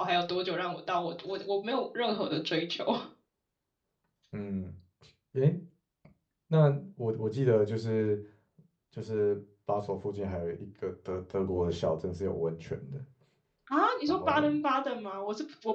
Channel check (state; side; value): identical; both; correlation 1.00